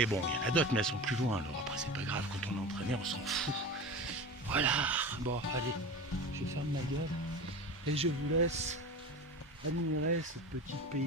bon, il y en a d'autres, mais elles sont plus loin. Alors après, c'est pas grave, quand on est entraîné, on s'en fout. Voilà. Bon, allez, je ferme ma gueule et je vous laisse admirer ce petit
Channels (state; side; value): normal; both; correlation 0.31